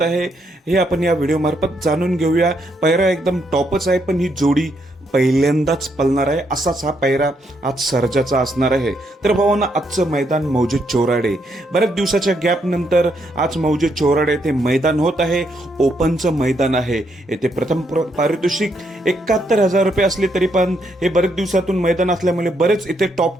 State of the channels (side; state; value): both; normal; correlation 0.76